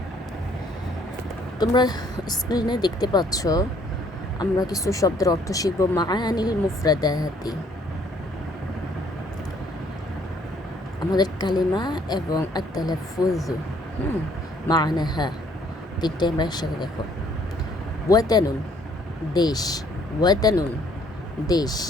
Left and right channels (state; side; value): normal; both; correlation 0.63